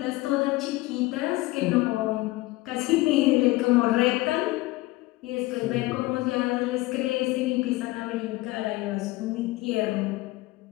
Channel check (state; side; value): quieter; right; 19.8 dB